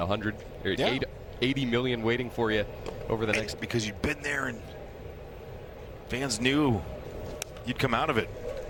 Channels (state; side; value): identical; both; correlation 1.00